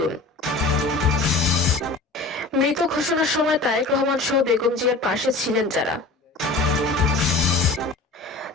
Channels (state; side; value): quieter; right; 3.5 dB